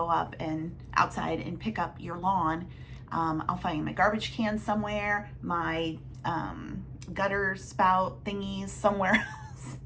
up and outside and pick up your lawn. I'll find my garbage can somewhere, my gutter spout thingies somewhere else.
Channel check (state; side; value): identical; both; correlation 1.00